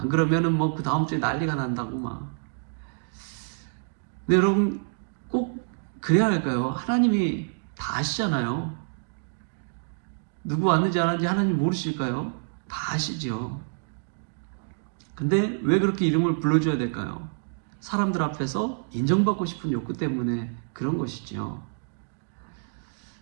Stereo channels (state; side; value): silent; left; digital silence